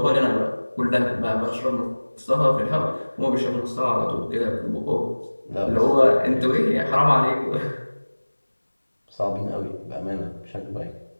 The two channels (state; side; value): inverted; both; correlation -1.00